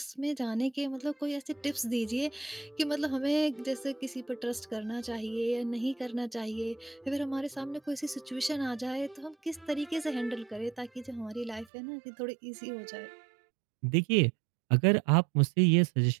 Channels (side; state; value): left; drops out; at 11.7 s